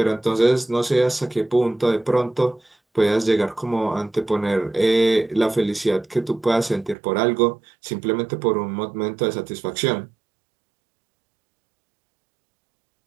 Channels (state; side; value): drops out; left; at 7.0 s